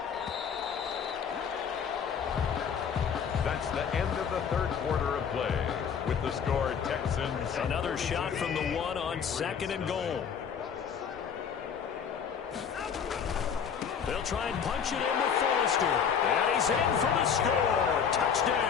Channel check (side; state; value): right; quieter; 7.3 dB